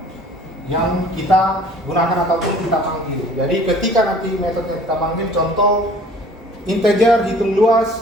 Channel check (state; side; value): normal; both; correlation 0.51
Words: yang kita gunakan ataupun kita panggil. Jadi ketika nanti metode yang kita panggil, contoh integer, hitung